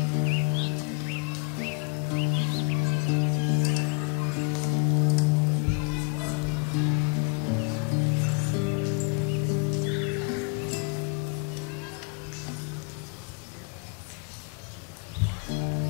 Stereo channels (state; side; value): quieter; right; 39.9 dB